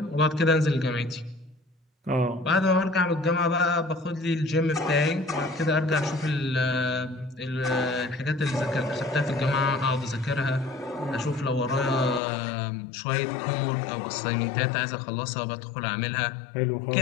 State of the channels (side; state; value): right; drops out; at 12.2 s